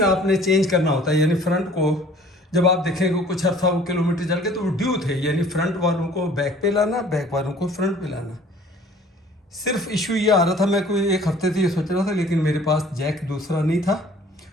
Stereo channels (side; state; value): both; normal; correlation 0.52